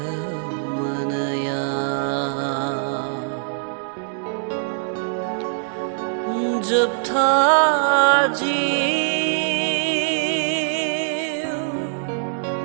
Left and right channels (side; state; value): left; silent; digital silence